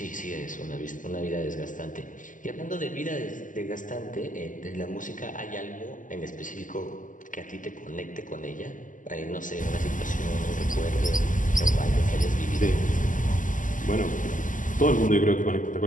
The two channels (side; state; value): right; late; 0.38 ms